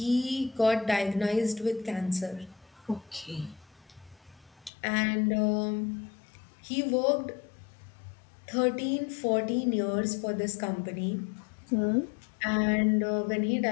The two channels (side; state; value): right; drops out; at 4.7 s